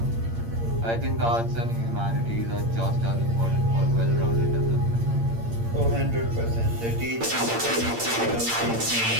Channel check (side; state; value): left; late; 8.7 ms